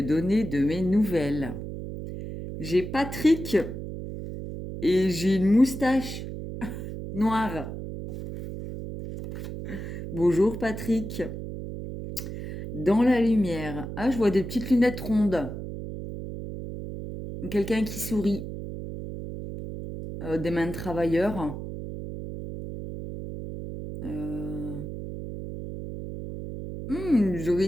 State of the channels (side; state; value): right; noise; hum, 8 dB below the sound